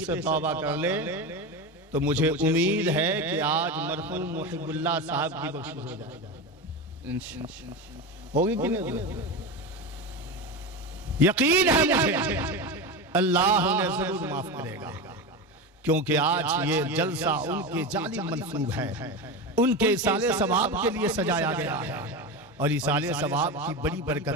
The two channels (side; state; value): both; normal; correlation 0.21